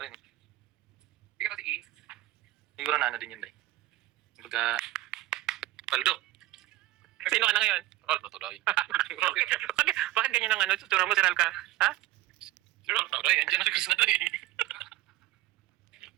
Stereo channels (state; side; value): quieter; left; 16.4 dB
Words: rin. Hindi ka kasi siguro na ano din yun, day. Kumbaga, paldo. Sino ka na ngayon? Roll, natuloy. Bakit ganyan ang tutura mo, Siral ka? Ha? Sure, natuloy. Andiyan na si Chris na to eh.